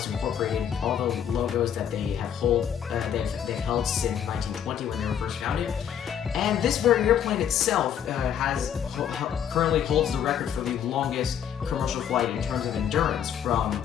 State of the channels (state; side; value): quieter; right; 9.0 dB